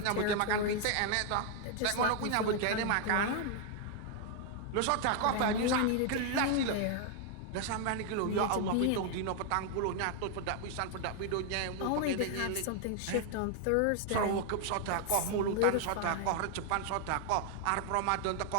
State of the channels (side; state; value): both; different; correlation 0.00